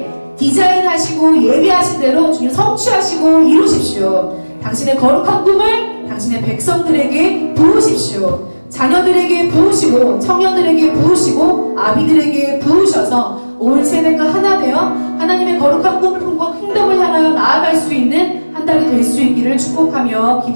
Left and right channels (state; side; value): inverted; both; correlation -1.00